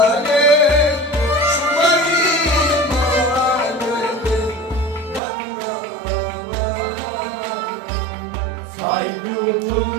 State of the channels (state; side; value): drops out; left; at 5.2 s